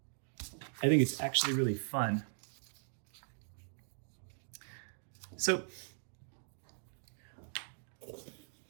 think it's actually really fun. So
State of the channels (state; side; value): silent; left; digital silence